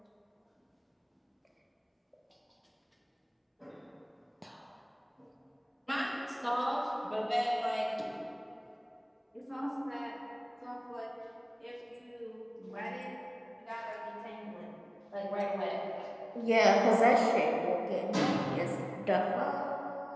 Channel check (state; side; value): identical; both; correlation 1.00